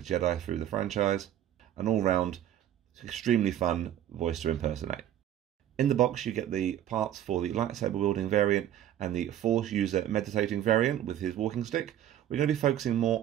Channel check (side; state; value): left; quieter; 11.4 dB